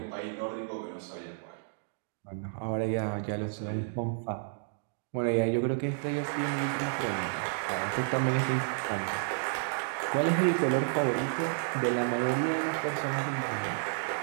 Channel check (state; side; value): silent; left; digital silence